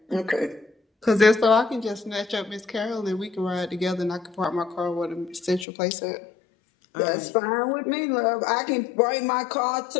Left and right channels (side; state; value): right; drops out; at 5.7 s